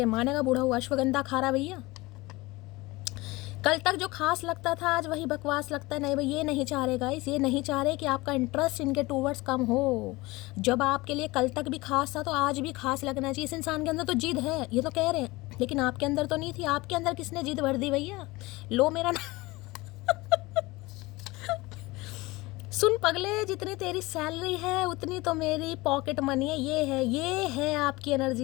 मानेगा। बूढ़ा हुआ अश्वगंधा खा रहा भैया। कल तक जो खास लगता था आज वही बकवास लगता है। नहीं भाई, ये नहीं चाह रहे गाइस, ये नहीं चाह रहे कि आपका इंटरेस्ट इनके टूवर्ड्स कम हो। जब आपके लिए कल तक भी खास था तो आज भी खास लगना चाहिए। इस इंसान के अंदर तो जिद है, ये तो कह रहे हैं, लेकिन आपके अंदर तो नहीं थी। आपके अंदर किसने जिद भर दी भैया? लो मेरा सुन पगले, जितनी तेरी सैलरी है उतनी तो मेरी पॉकेट मनी है। ये है आपकी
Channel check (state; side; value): quieter; right; 21.6 dB